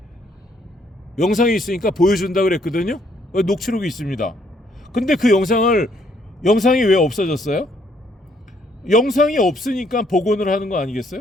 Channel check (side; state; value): both; normal; correlation 0.68